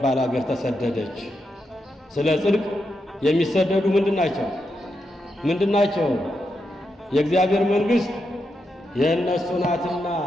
ሀገር ተሰደደች። ስለ ጽድቅ የሚሰደዱ ምንድናቸው? የእግዚአብሔር መንግሥት የእነሱ ናትና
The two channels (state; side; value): normal; both; correlation 0.85